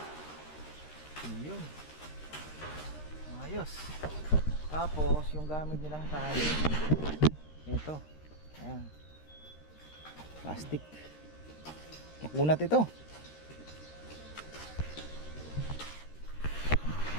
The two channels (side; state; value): right; late; 13 ms